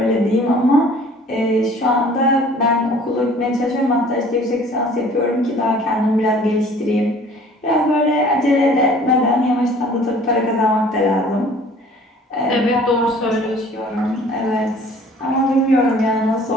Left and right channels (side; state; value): both; normal; correlation 0.51